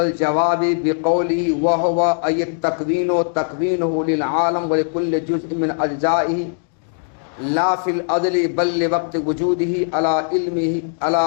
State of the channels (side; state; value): right; silent; digital silence